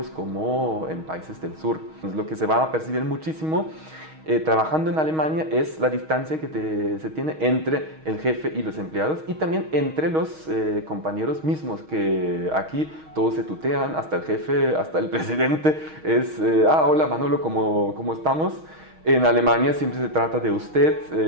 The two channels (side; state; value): left; late; 6.4 ms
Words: como en países del sur. Lo que se va a percibir muchísimo trabajando en Alemania es la distancia que se tiene entre el jefe y los empleados y también entre los compañeros mismos, que aquí todos se tutean, hasta el jefe, hasta el presidente es hola Manolo, ¿cómo estamos? En Alemania siempre se trata de